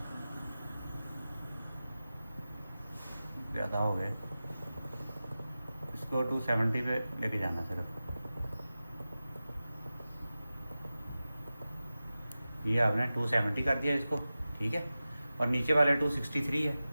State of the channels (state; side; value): inverted; both; correlation -0.95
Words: ज़्यादा हो गए। इसको 270 पे लेके जाना सिर्फ। ये आपने 270 कर दिया इसको, ठीक है। और नीचे वाले 263 है,